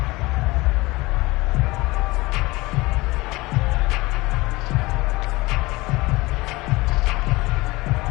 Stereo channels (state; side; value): quieter; right; 21.5 dB